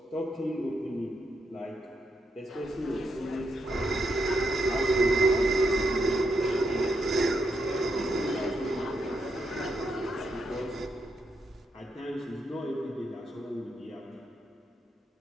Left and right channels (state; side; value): normal; both; correlation 0.81